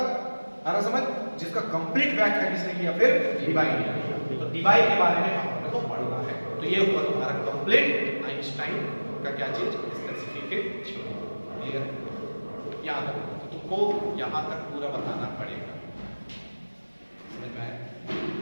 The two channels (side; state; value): both; inverted; correlation -1.00